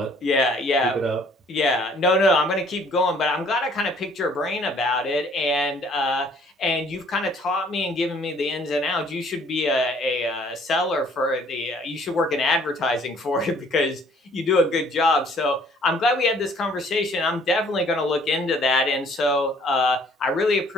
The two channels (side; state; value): both; normal; correlation 0.59